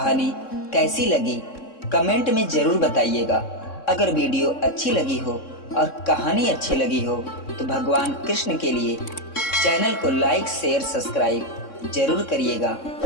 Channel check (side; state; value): right; late; 3.6 ms